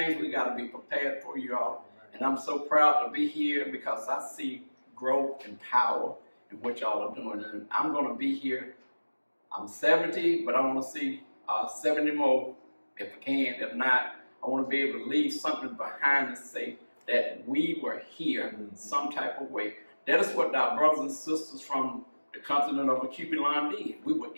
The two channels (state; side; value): inverted; both; correlation -1.00